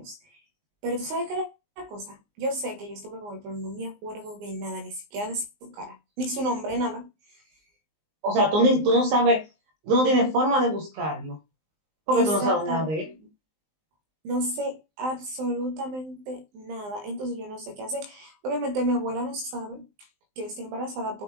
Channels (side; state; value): left; late; 19 ms